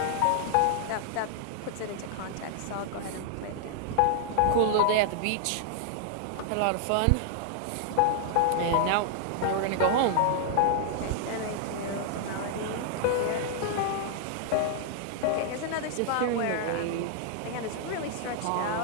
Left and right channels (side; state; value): both; different; correlation -0.01